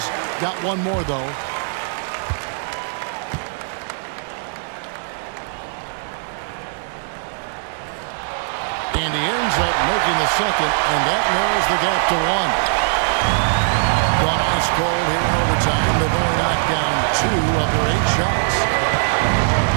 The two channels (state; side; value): silent; left; digital silence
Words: got one more, though. And he ends up making the second, and that narrows the gap to one. Gone ice cold here in overtime. They've only knocked down 2 of their 8 shots.